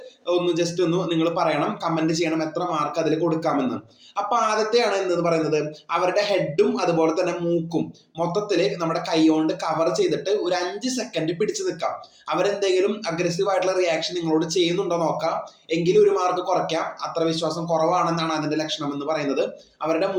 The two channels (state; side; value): identical; both; correlation 1.00